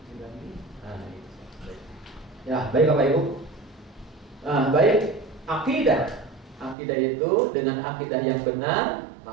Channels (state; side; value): drops out; left; at 6.8 s